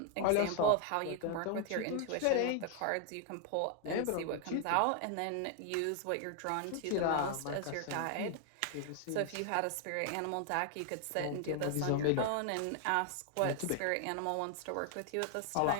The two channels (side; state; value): both; different; correlation 0.00